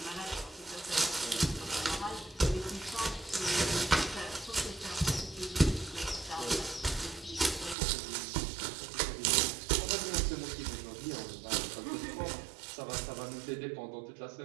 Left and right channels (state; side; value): drops out; left; at 7.8 s